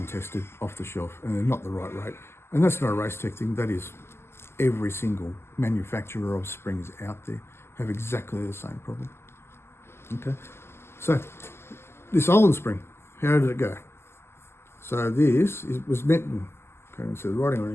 off the shelf, and they're not the right rate. And that's not a Race Tech thing. That is every single manufacturer of springs out there have exactly the same problem. Okay, so this Olin spring, how did it go? So was meant, can't even see the writing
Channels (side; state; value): right; late; 0.12 ms